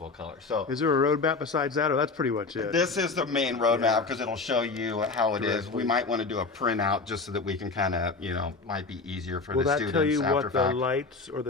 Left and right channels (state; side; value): quieter; right; 4.1 dB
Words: color. So is there a roadmap besides that, or that's pretty much it? This is the main roadmap because it'll show you how it is. We might want to do a printout just so that we can kind of, might be easier for the students. Will that tell you after what the lights or